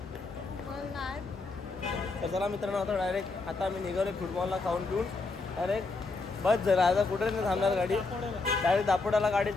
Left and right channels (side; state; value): right; quieter; 3.8 dB